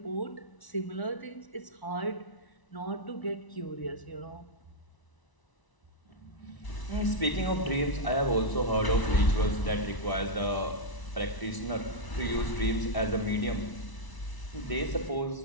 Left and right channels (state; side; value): late; right; 1.0 ms